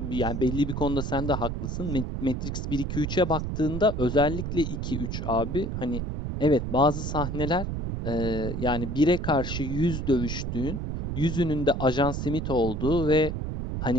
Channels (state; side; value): noise; right; rumble, 3 dB below the sound